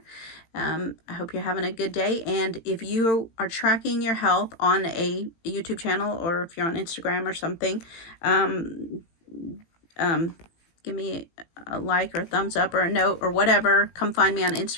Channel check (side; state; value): right; late; 18 ms